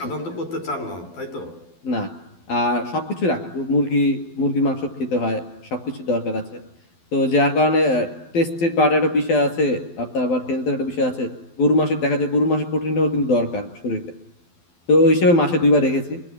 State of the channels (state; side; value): late; right; 12 ms